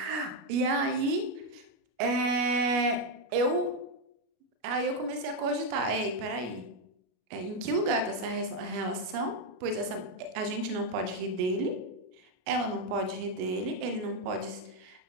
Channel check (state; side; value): late; left; 33 ms